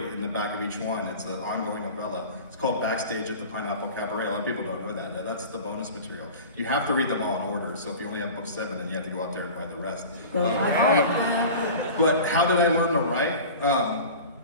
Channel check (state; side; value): inverted; both; correlation -0.36